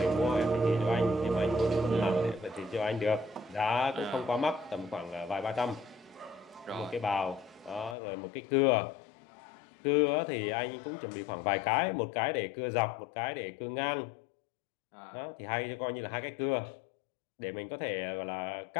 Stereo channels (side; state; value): right; drops out; at 8.0 s